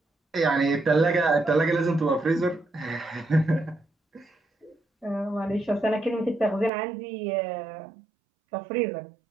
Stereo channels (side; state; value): left; drops out; at 6.7 s